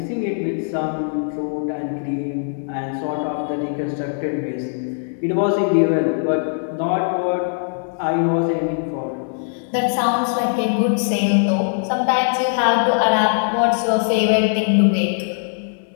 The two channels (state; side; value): silent; right; 63 dB below the other